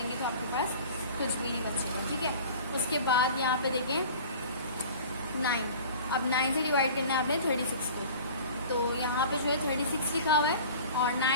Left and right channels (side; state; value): both; inverted; correlation -0.42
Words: तो आपके पास कुछ भी नहीं बचेगा, ठीक है। उसके बाद यहाँ पे देखें 9, अब 9 से डिवाइड करना है आपने 36 को, तो यहाँ पे जो है 36 लिखा हुआ है और